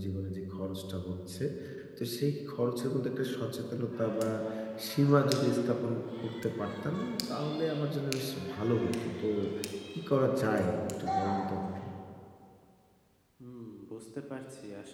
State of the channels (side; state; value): both; identical; correlation 1.00